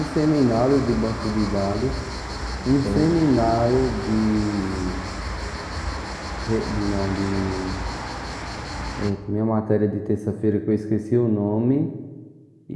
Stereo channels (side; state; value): both; identical; correlation 1.00